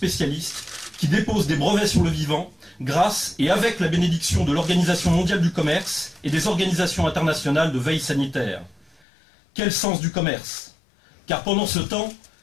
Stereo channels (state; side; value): drops out; right; at 9.0 s